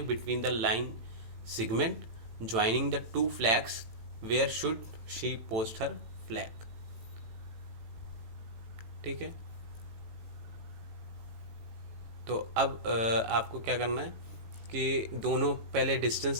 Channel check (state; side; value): late; left; 18 ms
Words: between the line segment joining the two flags, where should she post her flag, ठीक है। तो अब आपको क्या करना है कि दोनों पहले